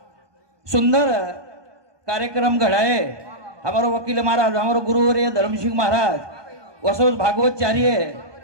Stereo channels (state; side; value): late; left; 1.2 ms